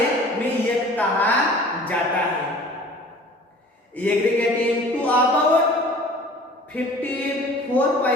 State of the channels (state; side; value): normal; both; correlation 0.46